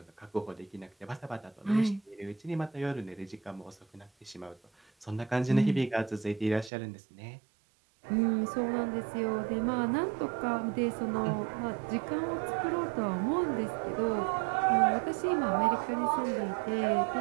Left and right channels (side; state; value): left; drops out; at 6.7 s